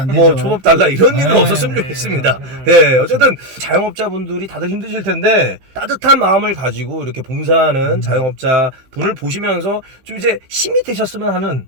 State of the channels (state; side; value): late; left; 15 ms